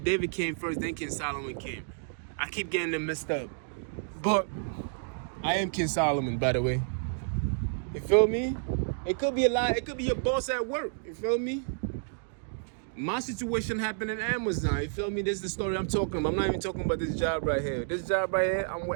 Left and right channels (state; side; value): silent; left; digital silence